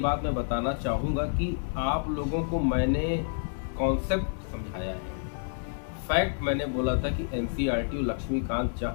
मैं बताना चाहूँगा कि आप लोगों को मैंने कॉन्सेप्ट समझाया है, फैक्ट मैंने बोला था कि एनसीईआरटी और लक्ष्मीकांत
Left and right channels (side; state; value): right; silent; 59 dB below the other